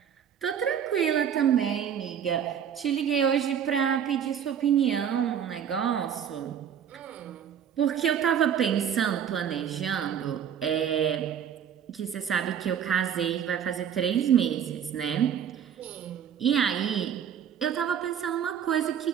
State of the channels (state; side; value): quieter; left; 8.6 dB